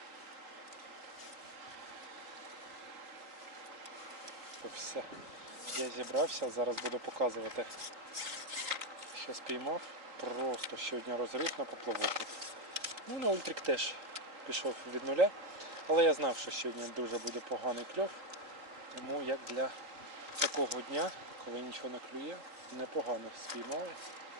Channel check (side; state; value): left; late; 3.9 ms